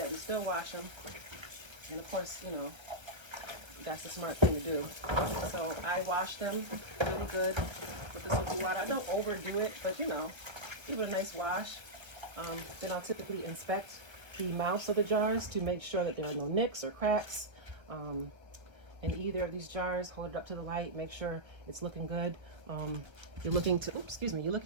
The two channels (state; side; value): late; left; 1.4 ms